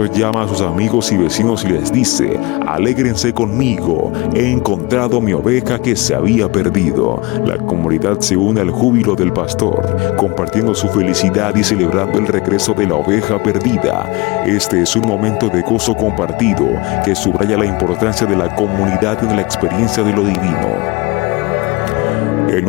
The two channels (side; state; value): right; quieter; 23.9 dB